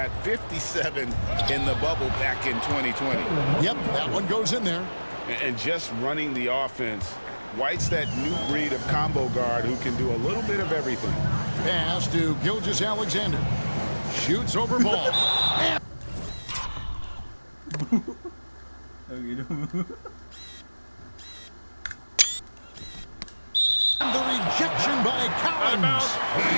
57 in the bubble back in 2020. Yep, that one goes in there. And just running the offense, White's that new breed of combo guard who can do a little bit of everything. Pass to Gilgeous-Alexander. Shoots over ball. The rejection by Collins.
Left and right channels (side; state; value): both; inverted; correlation -1.00